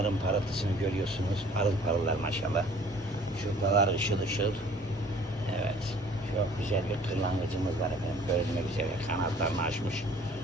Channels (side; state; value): both; normal; correlation 0.52